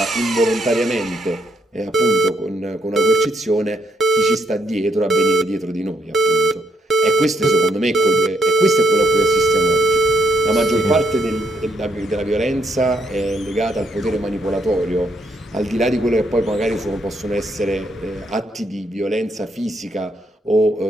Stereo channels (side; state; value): both; normal; correlation 0.75